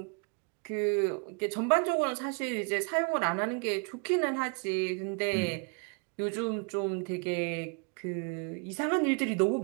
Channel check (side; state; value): left; quieter; 36.8 dB